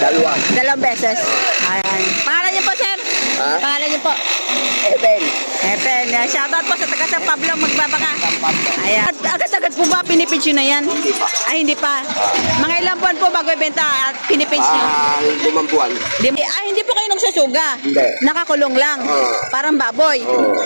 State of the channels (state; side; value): inverted; both; correlation -1.00